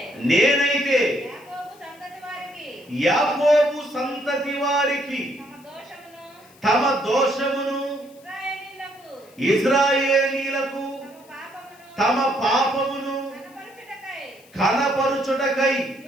నేనైతే యాకోబు సంతతి వారికి తమ దోషమును, ఇశ్రాయేలీయులకు తమ పాపమును కనపరుచుటకై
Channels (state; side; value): noise; left; hiss, 27 dB below the sound